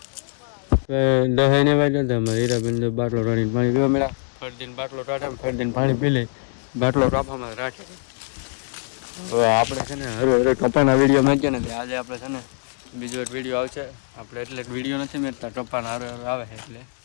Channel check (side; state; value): right; silent; digital silence